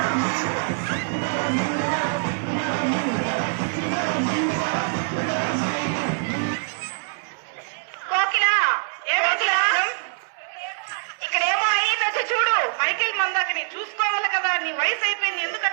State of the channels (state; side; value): silent; left; 63 dB below the other